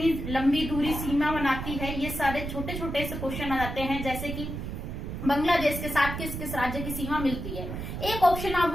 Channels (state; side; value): noise; right; rumble, 6 dB below the sound